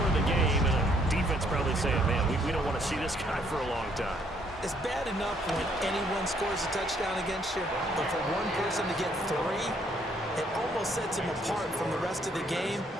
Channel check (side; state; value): both; normal; correlation 0.67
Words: of the game. And the defense probably saying, man, we don't want to see this guy for a long time. It's bad enough when anyone scores a touchdown against you, but for one person to get 3, it almost sets him apart from the rest of the game,